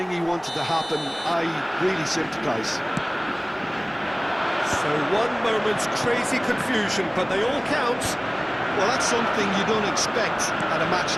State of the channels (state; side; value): identical; both; correlation 1.00